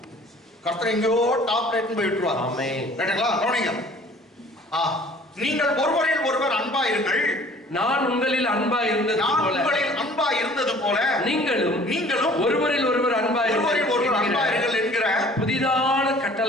கர்த்தர் எங்கேயோ டாப் ரேட்னு போய் விட்டுருவார். ஆமென். ரைட்டுங்களா? கவனிங்க. நீங்கள் ஒருவரில் ஒருவர் அன்பாயிருங்கள். நான் உங்களில் அன்பா இருந்தது போல, உங்களில் அன்பா இருந்தது போல நீங்களும் ஒருவரில் ஒருவர் அன்பாயிருங்கள் என்கிற புதிதான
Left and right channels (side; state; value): both; normal; correlation 0.51